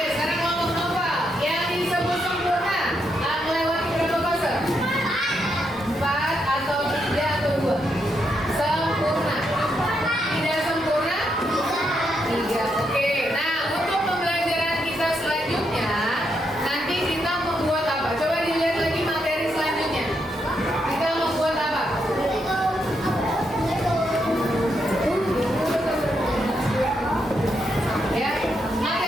sekarang kelompok novel. Yang disebut sempurna melewati berapa fase? 4 atau 3 atau 2? Sempurna. Tidak sempurna? 3. Oke. Nah, untuk pembelajaran kita selanjutnya, nanti kita membuat apa? Coba dilihat lagi materi selanjutnya. Kita membuat apa? Ya,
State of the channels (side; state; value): both; normal; correlation 0.80